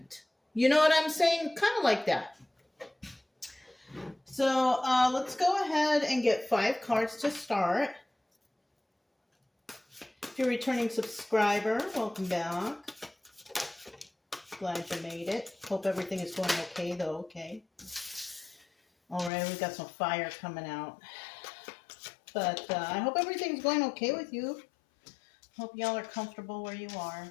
You know what I'm saying? Kind of like that. So let's go ahead and get 5 cards to start. If you're a returning subscriber, welcome back. Glad you made it. Hope everything is going okay, though. Okay. All right, we got some fire coming out. But I hope everything's going okay with you. Hope y'all are comfortable where you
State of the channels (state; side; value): drops out; right; at 19.3 s